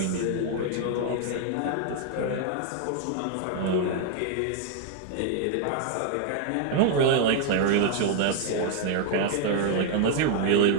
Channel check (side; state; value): both; different; correlation 0.00